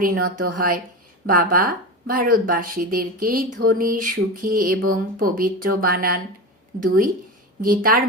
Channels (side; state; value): both; normal; correlation 0.24